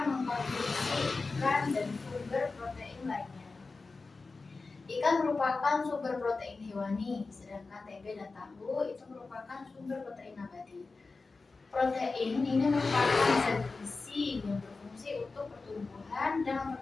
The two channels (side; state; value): right; quieter; 3.9 dB